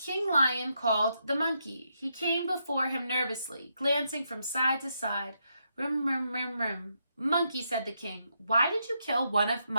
Lion called the monkey. He came before him nervously, glancing from side to side. "Rum, rum, rum, rum." "Monkey," said the king, "why did you kill one of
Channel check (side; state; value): both; inverted; correlation -0.80